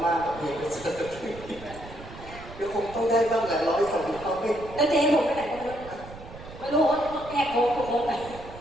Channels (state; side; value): noise; right; rumble, 16 dB below the sound